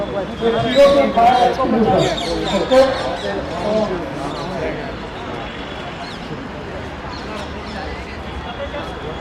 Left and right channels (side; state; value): both; identical; correlation 1.00